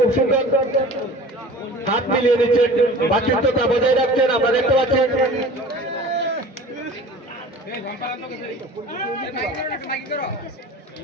সুন্দর হাত মিলিয়ে নিচ্ছেন, ভাতৃত্বতা বজায় রাখছেন, আমরা দেখতে পাচ্ছেন।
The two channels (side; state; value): both; normal; correlation 0.41